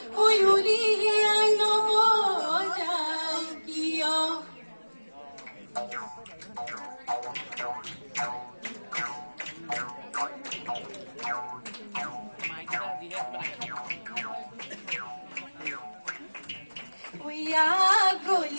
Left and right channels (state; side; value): inverted; both; correlation -1.00